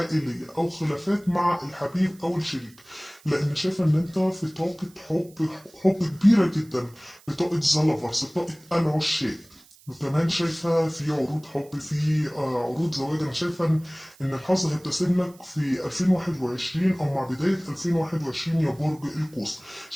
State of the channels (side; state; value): right; noise; hiss, 26 dB below the sound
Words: أو خلافات مع الحبيب أو الشريك، لأن شايف إن أنت في طاقة حب كبيرة جدا، بطاقة زلفرز، بطاقة العشاق. وكمان شايفة في عروض حب، في عروض زواج. أنا شايفة إن الحظ هيبتسم لك في 2021 أو مع بداية 2021 يا برج القوس.